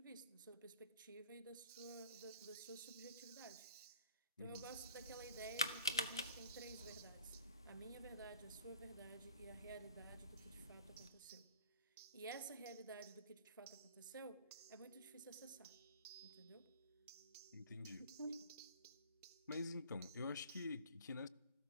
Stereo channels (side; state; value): both; inverted; correlation -0.49